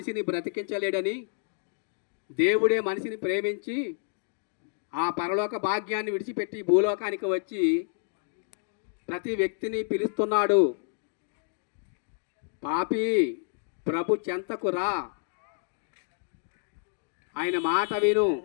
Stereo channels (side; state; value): right; silent; digital silence